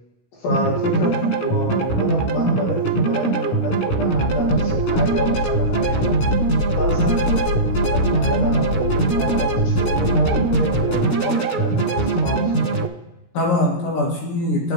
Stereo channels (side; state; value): right; late; 17 ms